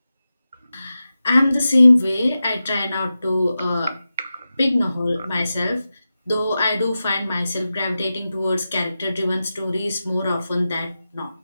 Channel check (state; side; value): inverted; both; correlation -0.93